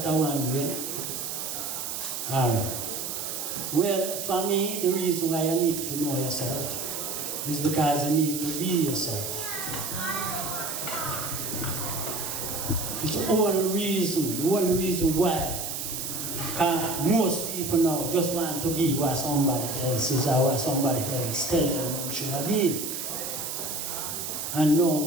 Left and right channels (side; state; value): right; noise; hiss, 4 dB below the sound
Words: one way. Alright. Well, for me, the reason why you need to know yourself is because you need to be yourself. It's the only reason why most people now just want to be what somebody else is or what somebody else tells them should be. And